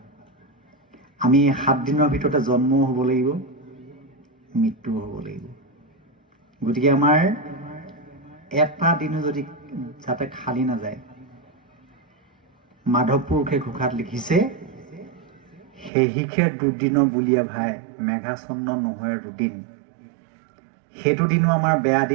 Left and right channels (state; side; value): drops out; left; at 15.9 s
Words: আমি 7 দিনৰ ভিতৰতে জন্মও হ'ব লাগিব, মৃত্যুও হ'ব লাগিব। গতিকে আমাৰ এটা দিনো যদি যাতে খালী নাযায়। মাধৱ পুৰুষে ঘোষাত লিখিছে, সেহিখে দুদিনৰ বুলিয়ে ভাই, মেঘাচন্ন নহয় দুদিন। সেইটো দিনো আমাৰ বেয়া